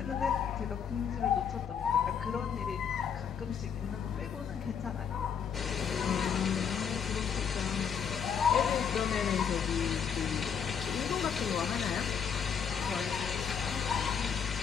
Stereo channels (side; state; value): right; quieter; 7.3 dB